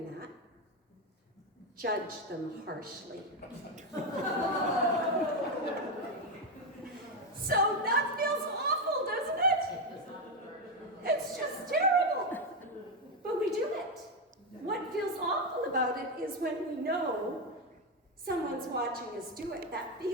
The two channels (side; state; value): both; normal; correlation 0.08